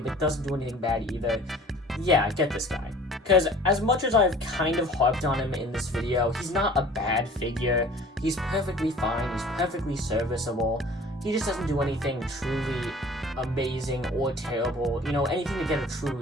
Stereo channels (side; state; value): both; normal; correlation 0.47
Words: doesn't do anything bad either, yeah, get this guy. Because as much as I've kind of harped on him in this video, he's not a bad figure. He's perfectly fine, he's perfectly serviceable. He just doesn't do anything truly amazing or terrible, you know, anything to get a true